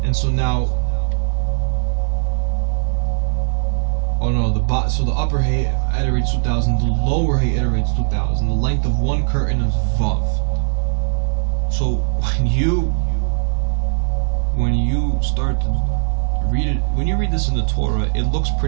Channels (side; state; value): left; silent; digital silence